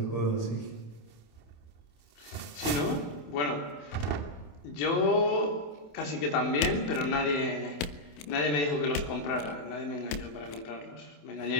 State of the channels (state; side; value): late; right; 28 ms